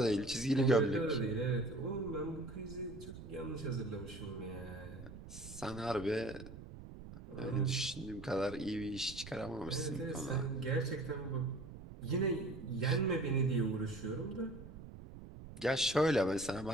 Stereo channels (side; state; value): right; noise; rumble, 13 dB below the sound